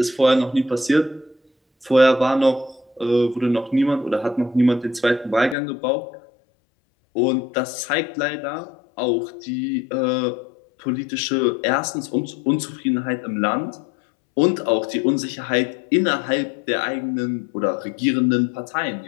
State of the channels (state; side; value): drops out; right; at 5.6 s